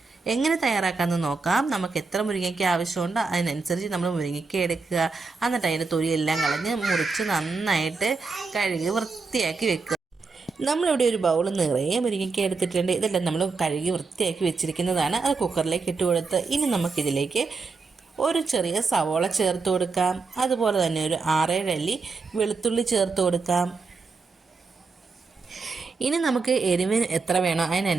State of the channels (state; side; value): quieter; left; 4.4 dB